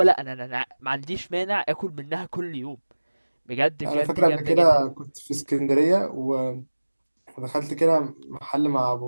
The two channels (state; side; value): inverted; both; correlation -1.00